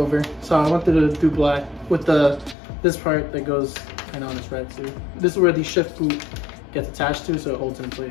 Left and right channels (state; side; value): drops out; right; at 2.6 s